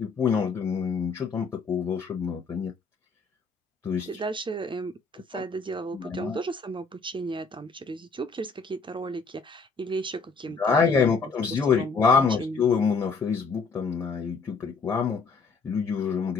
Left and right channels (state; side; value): quieter; right; 4.5 dB